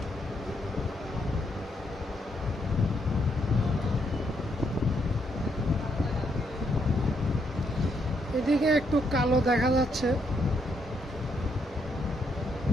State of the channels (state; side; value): normal; both; correlation 0.76